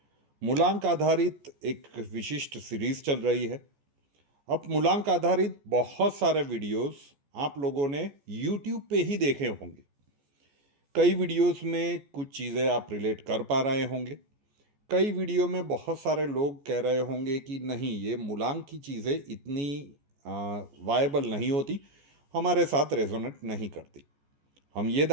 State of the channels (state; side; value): late; left; 14 ms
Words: मूलांक आधारित एक विशिष्ट सीरीज चल रही है। अब मूलांक आधारित बहुत सारे वीडियोस आप लोगों ने यूट्यूब पे ही देखे होंगे। कई वीडियोस में कुछ चीज़ें आप रिलेट कर पा रहे होंगे, कई वीडियो में बहुत सारे लोग कह रहे होंगे कि नहीं, ये मूलांक की चीज़ें इतनी वायबल नहीं होती, हमारे साथ रेजोनेट नहीं करती। हम ये